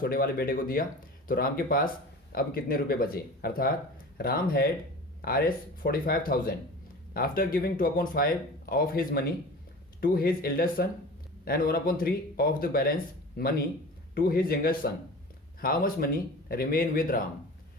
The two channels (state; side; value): normal; both; correlation 0.37